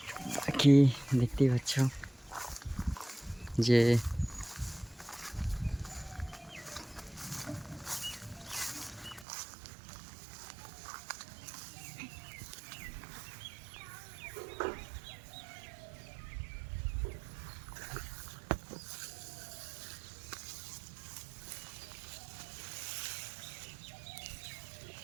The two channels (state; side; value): drops out; left; at 9.2 s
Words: বাকি দেখতেই পাচ্ছ যে